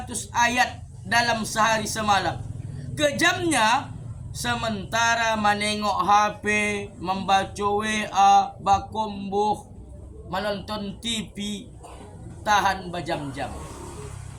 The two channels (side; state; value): both; identical; correlation 1.00